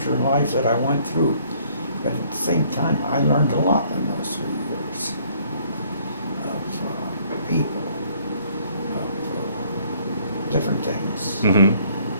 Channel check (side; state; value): both; inverted; correlation -0.61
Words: in life that I went through, but at the same time, I learned a lot in those 3 years of people, of different things, Mm-hmm.